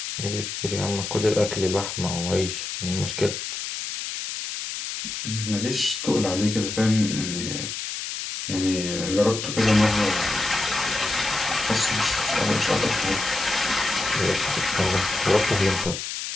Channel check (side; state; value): left; noise; hiss, 6 dB below the sound